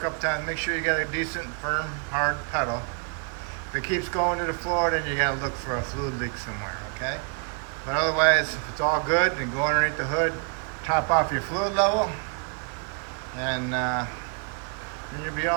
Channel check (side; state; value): left; quieter; 39.4 dB